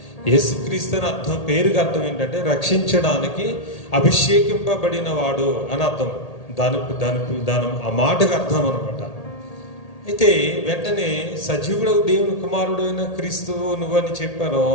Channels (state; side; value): late; right; 1.8 ms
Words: యేసుక్రీస్తు అని అర్థం, పేరుకి అర్థం ఏంటంటే రక్షించడానికి అభిషేకింపబడిన వాడు అని అర్థం. దాని ఆ మాటకు అర్థం అనమాట. అయితే వెంటనే సజీవుడు దేవుని కుమారుడు అయిన క్రీస్తువు నువ్వు అని చెప్పారో